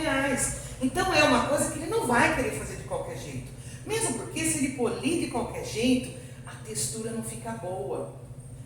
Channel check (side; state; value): both; identical; correlation 1.00